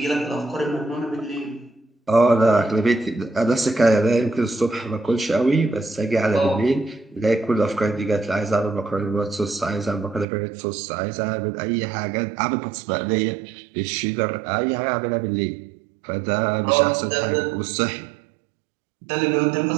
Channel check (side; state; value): left; drops out; at 10.2 s